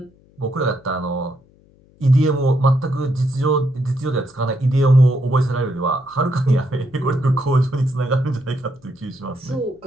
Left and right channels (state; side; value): noise; left; hum, 30 dB below the sound